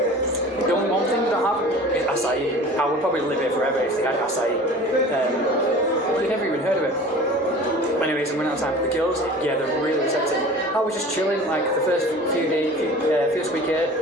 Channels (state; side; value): normal; both; correlation 0.41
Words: The only one thing they don't have is acai. I would probably live here forever if they had acai. You've never even heard of it. But anyways, I'm running out of time. The girls, yeah, they're really receptive. I was just chilling, like the first first week here,